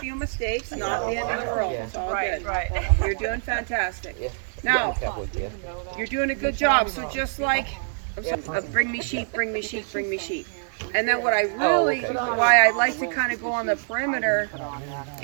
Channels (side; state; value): left; silent; digital silence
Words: few mistakes, not the end of the world. Yeah. It's all Right, good. right. You're doing fantastic. Yeah. Now, Cowboy, yeah. you're doing a good job. So just like, bring me sheep, bring me sheep, bring me sheep. And then what I really, okay. why I like to kind of go on the perimeter